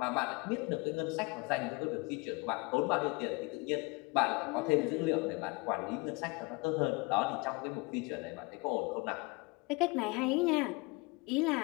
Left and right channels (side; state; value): right; quieter; 27.3 dB